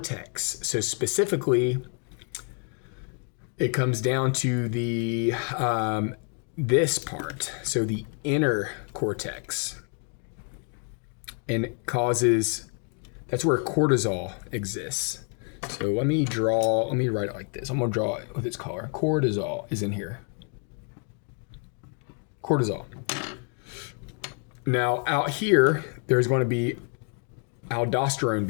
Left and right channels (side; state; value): right; quieter; 40.0 dB